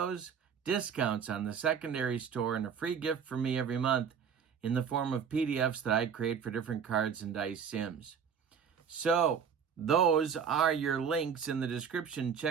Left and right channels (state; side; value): quieter; left; 7.1 dB